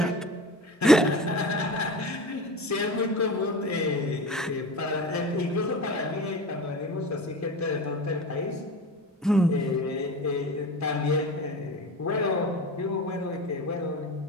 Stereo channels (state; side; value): normal; both; correlation 0.32